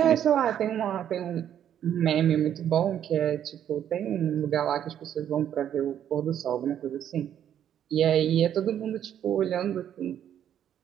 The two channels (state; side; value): quieter; left; 10.0 dB